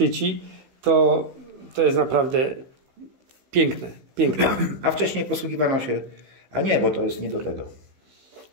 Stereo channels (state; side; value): late; left; 15 ms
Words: to jest naprawdę piękne. Piękne. A wcześniej posługiwano się... A nie, bo to jest nie do tego.